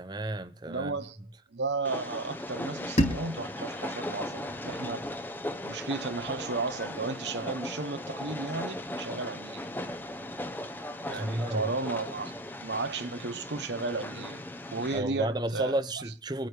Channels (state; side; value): normal; both; correlation 0.29